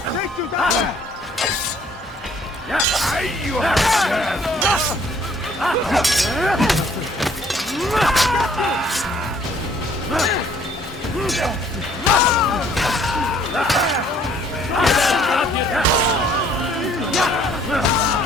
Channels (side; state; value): both; normal; correlation 0.60